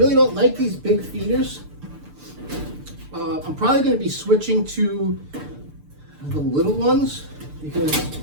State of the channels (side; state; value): left; late; 6.8 ms